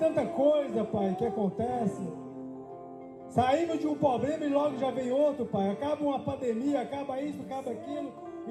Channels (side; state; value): both; identical; correlation 1.00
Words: coisa, Pai, que acontece. Saímos de um problema e logo já vem outro, Pai. Acaba uma pandemia, acaba isso, acaba aquilo,